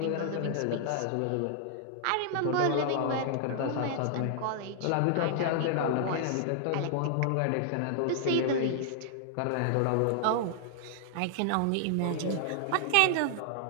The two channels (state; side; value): different; both; correlation -0.01